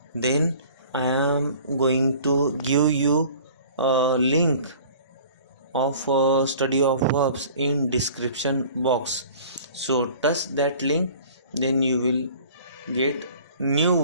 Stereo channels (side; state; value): both; inverted; correlation -0.47